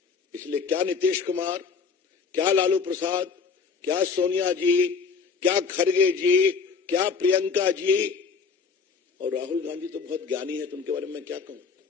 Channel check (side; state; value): right; quieter; 5.5 dB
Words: इसलिए क्या नीतीश कुमार, क्या लालू प्रसाद, क्या सोनिया जी, क्या खड़गे जी, क्या प्रियंका जी और राहुल गांधी तो बहुत ज्ञानी है, तो उनके बारे में क्या कहूं।